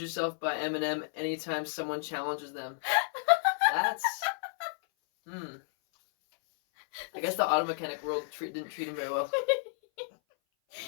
by Eminem anytime someone challenges them. That's... I guess the auto mechanic world didn't treat him very well.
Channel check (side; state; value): right; silent; 57 dB below the other